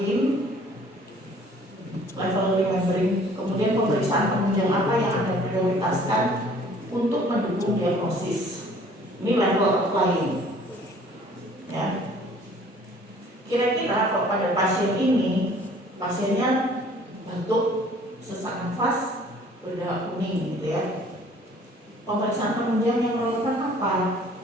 Level remembering, kemudian pemeriksaan penunjang apa yang Anda prioritaskan untuk mendukung diagnosis. Ini level applying. Ya. Kira-kira kalau pada pasien ini, pasiennya batuk, sesak nafas, berdarah kuning gitu ya. Pemeriksaan penunjang yang relevan apa?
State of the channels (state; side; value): normal; both; correlation 0.54